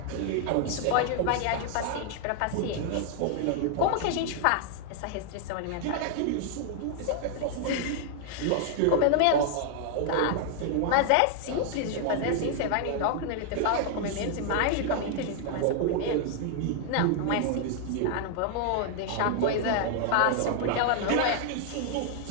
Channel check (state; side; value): different; both; correlation 0.00